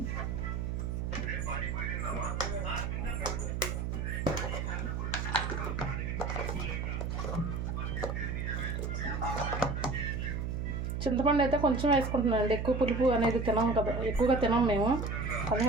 చింతపండు అయితే కొంచెం వేసుకుంటున్నాను అండి, ఎక్కువ పులుపు అనేది తినాం కదా, ఎక్కువగా తినాం మేము,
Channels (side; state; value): right; noise; hum, 2 dB below the sound